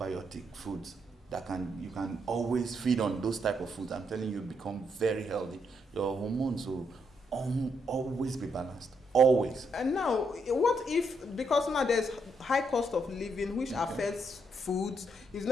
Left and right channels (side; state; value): both; normal; correlation 0.77